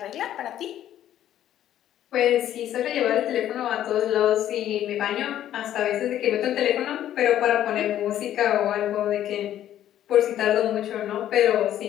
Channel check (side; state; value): right; quieter; 11.6 dB